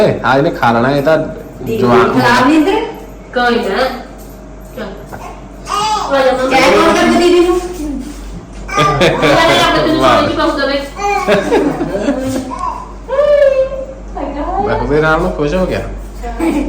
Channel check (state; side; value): identical; both; correlation 1.00